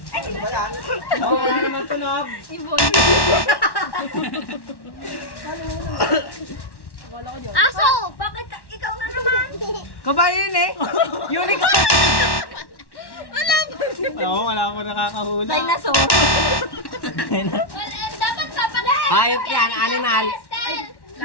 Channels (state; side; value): late; right; 1.1 ms